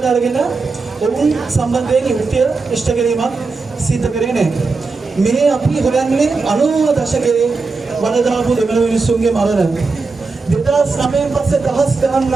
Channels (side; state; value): left; quieter; 4.1 dB